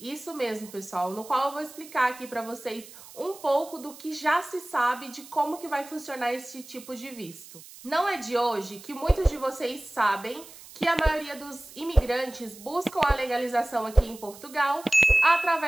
mesmo, pessoal, no qual eu vou explicar aqui para vocês um pouco do que já se sabe de como que vai funcionar esse tipo de visto. Não é de hoje que muitos de vocês sabem que a maioria dos imigrantes buscam a legalização aqui em Portugal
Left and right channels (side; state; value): right; noise; hiss, 18 dB below the sound